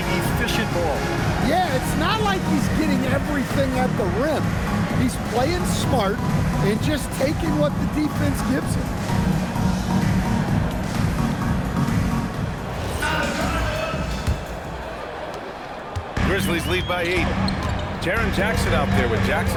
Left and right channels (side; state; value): both; identical; correlation 1.00